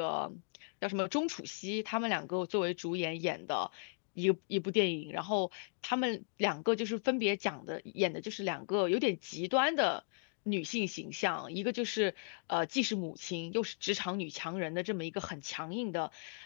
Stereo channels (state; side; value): silent; right; digital silence